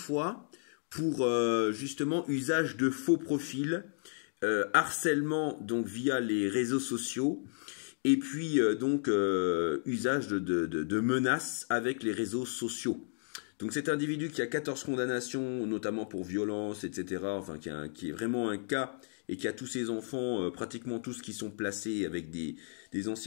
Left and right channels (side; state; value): right; silent; digital silence